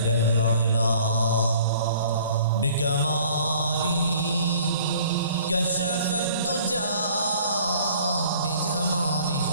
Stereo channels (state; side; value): inverted; both; correlation -0.53